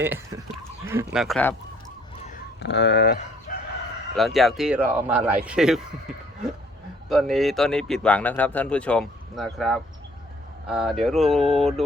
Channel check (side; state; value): both; normal; correlation 0.60